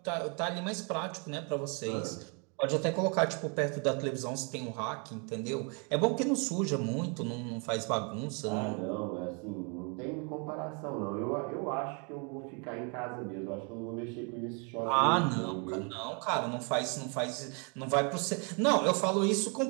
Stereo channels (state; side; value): quieter; left; 35.5 dB